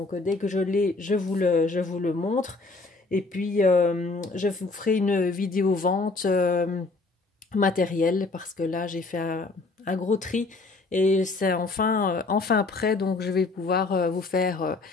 dès que je l'ai, je vous le montre. Et puis je vous ferai une vidéo vente matériel parce que là j'ai fait un gros tri et c'est enfin prêt, donc je vais pouvoir vous faire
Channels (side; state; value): right; quieter; 3.6 dB